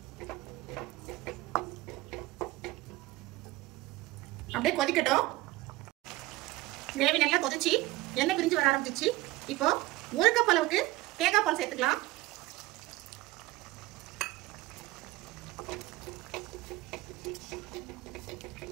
அப்படியே கொதிக்கட்டும். கிரேவி நல்லா கொதிச்சு எண்ணெய் பிரிஞ்சு வர ஆரம்பிச்சிச்சு. இப்போ 1 கப் அளவுக்கு தேங்காய் பால் சேர்த்துக்கலாம்.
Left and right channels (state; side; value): quieter; left; 18.6 dB